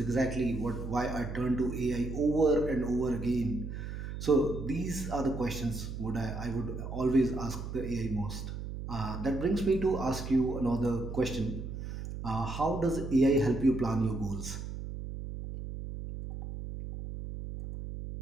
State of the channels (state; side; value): noise; right; hum, 7 dB below the sound